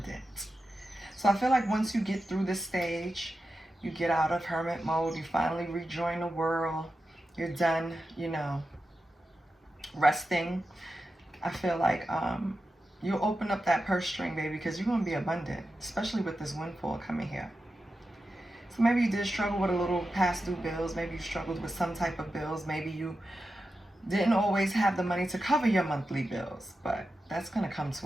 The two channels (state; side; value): normal; both; correlation 0.91